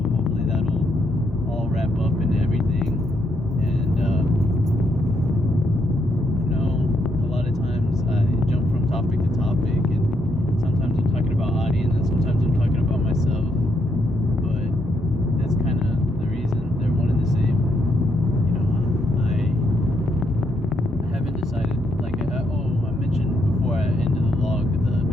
hopefully that'll all wrap up into everything. And a lot of times I jump from topic to topic, and sometimes I'm talking about audience, and sometimes I'm talking about myself. But that's kind of the reason they're one and the same. I haven't decided. Like, I mentioned before I ended the log, the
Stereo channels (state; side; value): normal; both; correlation 0.76